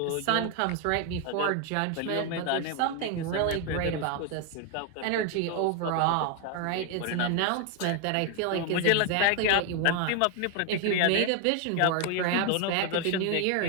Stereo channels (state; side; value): different; both; correlation 0.01